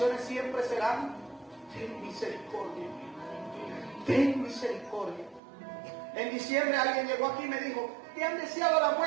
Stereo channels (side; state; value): left; drops out; at 5.4 s